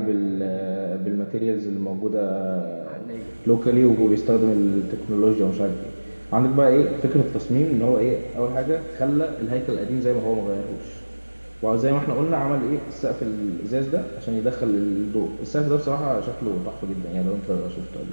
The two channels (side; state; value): both; inverted; correlation -1.00